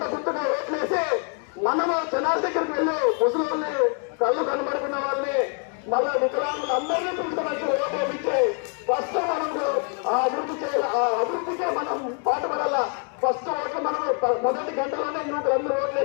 గుర్తుగా ఓట్లేసి మనము జనాల దగ్గరికి వెళ్ళి ముసలి కళ్ళు కనబడుకున్న వాళ్ళని మళ్ళీ వికలాంగులు అందరినీ పిలుచుకోవచ్చు. ఓట్లు ఫస్ట్ మనము ఆ అభివృద్ధి చేయాలి. ఆ అభివృద్ధికే మనం పాటుపడాల. ఫస్ట్ ఓట్లు మనము మొదటి గంటలోనే యువకులందరూ ఓట్లు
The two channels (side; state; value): right; quieter; 39.3 dB